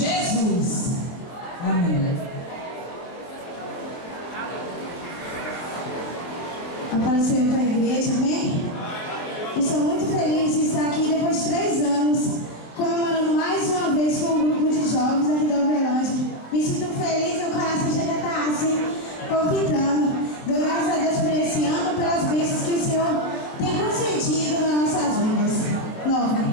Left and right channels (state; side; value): late; right; 23 ms